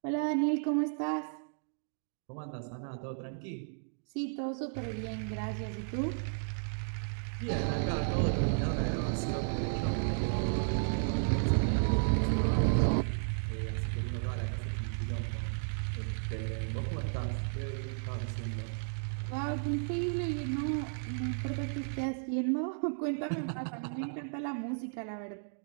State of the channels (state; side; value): silent; left; digital silence